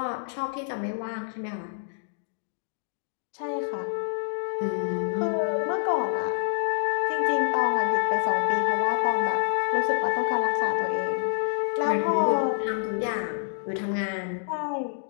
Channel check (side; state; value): right; silent; digital silence